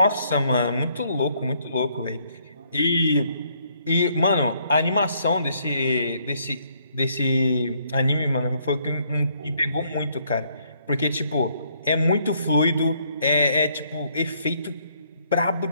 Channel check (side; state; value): both; inverted; correlation -0.69